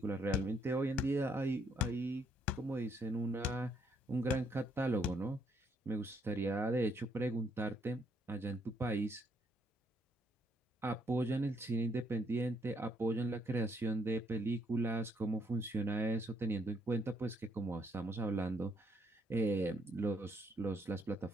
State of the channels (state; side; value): normal; both; correlation 0.71